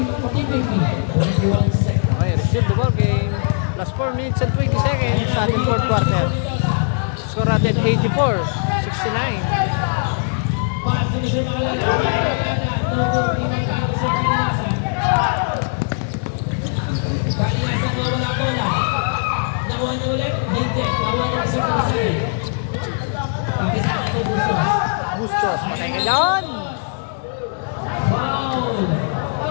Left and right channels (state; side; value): silent; right; 66 dB below the other